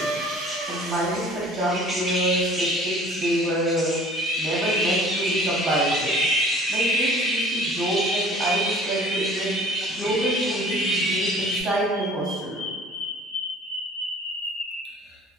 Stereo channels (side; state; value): both; normal; correlation 0.49